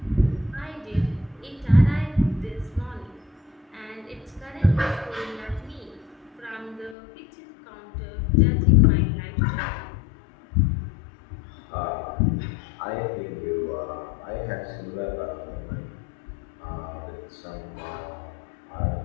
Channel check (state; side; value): drops out; right; at 7.0 s